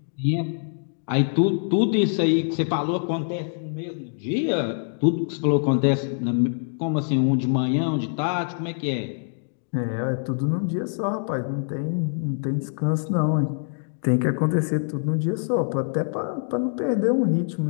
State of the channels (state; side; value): silent; right; digital silence